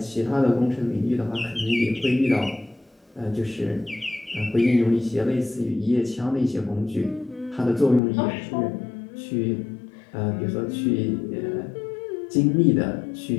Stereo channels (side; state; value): right; drops out; at 8.0 s